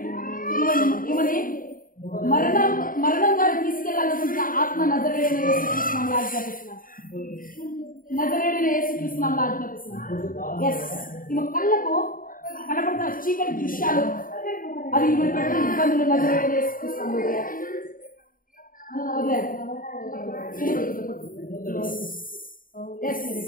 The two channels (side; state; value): right; late; 0.40 ms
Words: ఇవన్నీ మరణం వారిని తీసుకెళ్లాలనుకుంటున్న ఆత్మ నజరేయుడైన యేసుక్రీస్తు నామములో ఆజ్ఞాపిస్తున్నాను. నజరేయుడైన యేసుక్రీస్తు నామములో ఆజ్ఞాపిస్తున్నాను. ఎస్, ఈమె కళ్ళకు కనపడుతున్న చీకటి దృశ్యాలు అది ఈమె పెట్టిన ఇబ్బందులు నజరేయుడైన యేసుక్రీస్తు నామములో